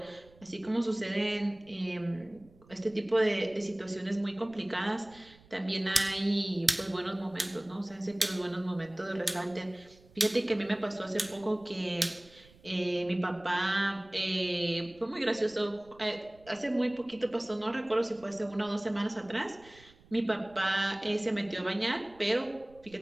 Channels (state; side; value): noise; right; rumble, 26 dB below the sound